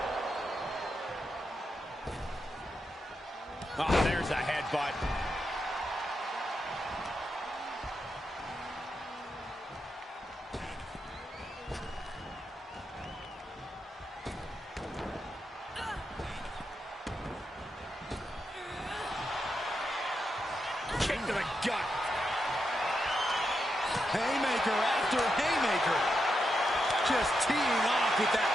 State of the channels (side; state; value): both; normal; correlation 0.85